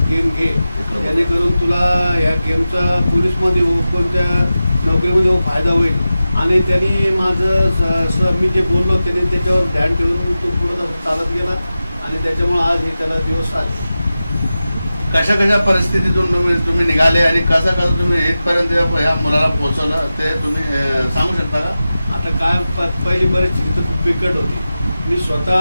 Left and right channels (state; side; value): inverted; both; correlation -0.94